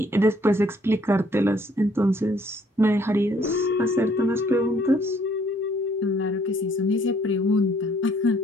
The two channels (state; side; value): normal; both; correlation 0.63